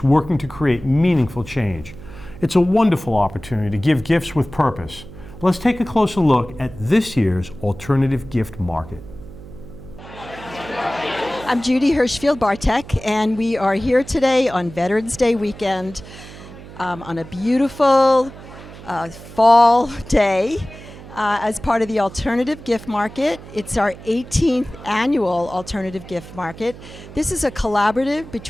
working to create meaningful change. It's a wonderful opportunity to give gifts with purpose. Let's take a closer look at this year's Alternative Gift Market. I'm Judy Hirschfield Bartek, and we are here today on Veterans Day weekend on a beautiful fall day as part of the Alternative Gift Market. It's our 18th annual Alternative Gift Market. This is a collaborative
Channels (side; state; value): right; noise; hum, 16 dB below the sound